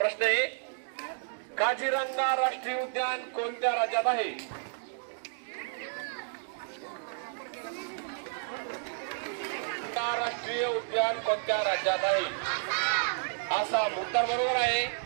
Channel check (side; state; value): left; silent; digital silence